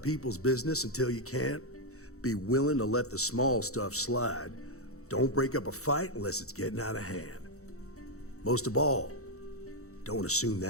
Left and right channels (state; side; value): late; right; 0.64 ms